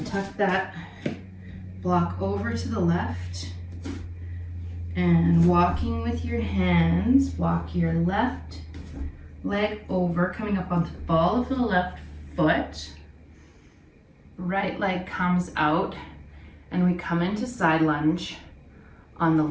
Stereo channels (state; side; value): identical; both; correlation 1.00